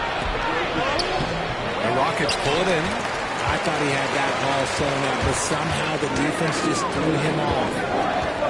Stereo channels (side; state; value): both; identical; correlation 1.00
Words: The Rockets pull it in. I thought he had that ball sewn up, but somehow the defense just threw him off.